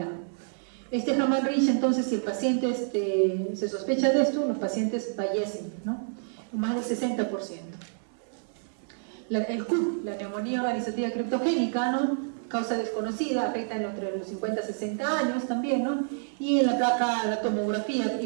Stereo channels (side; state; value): left; silent; 59 dB below the other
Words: Hamann-Rich, entonces, si el paciente se sospecha de esto, los pacientes fallecen, ¿no?, más del 60%. El CUP, la neumonía organizativa criptogénica, ¿no?, causa desconocida, afecta entre los 50 a 60 años también, ¿no? Y en la tomografía